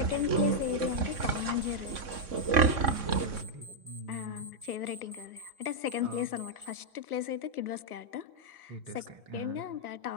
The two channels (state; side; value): late; left; 3.6 ms